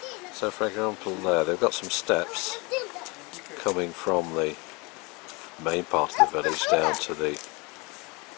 So for example there, they've got some steps coming from the main part of the village down to the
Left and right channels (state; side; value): quieter; right; 27.7 dB